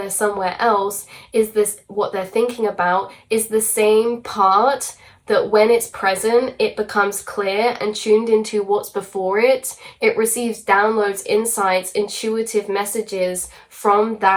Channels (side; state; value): both; identical; correlation 1.00